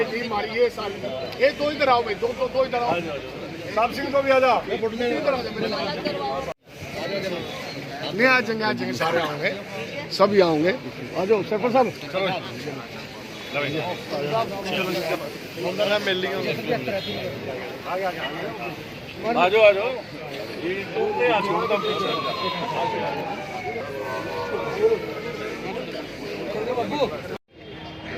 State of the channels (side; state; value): both; identical; correlation 1.00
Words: टीम हमारी ये साल ये दो इधर आओ भाई, दो इधर आओ। साहब सिंह को भी आ जा, इधर आ जा मेरे साथ। नहीं आ जाएंगे सारे आएंगे, सभी आएंगे। आ जाओ सरपंच साहब, मिल ली आ जाओ।